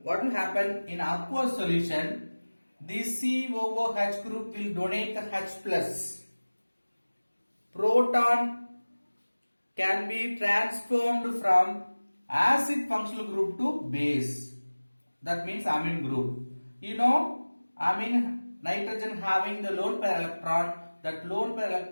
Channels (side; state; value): both; inverted; correlation -1.00